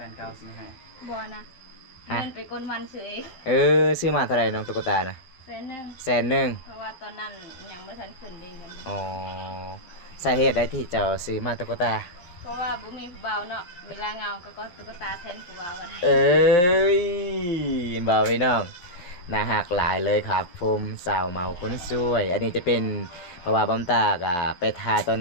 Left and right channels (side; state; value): right; late; 11 ms